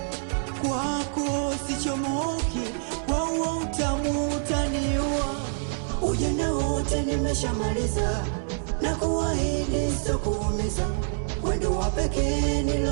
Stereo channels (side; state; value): left; silent; digital silence